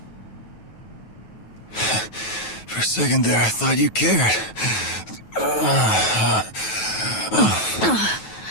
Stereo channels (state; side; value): late; right; 9.3 ms